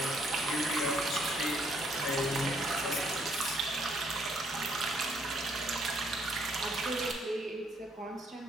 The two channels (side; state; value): both; normal; correlation 0.69